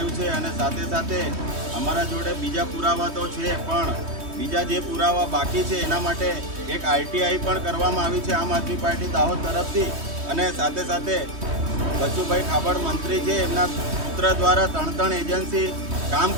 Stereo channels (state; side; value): late; left; 3.2 ms